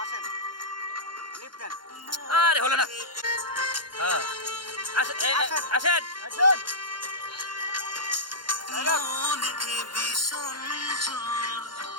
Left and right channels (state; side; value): late; left; 0.71 ms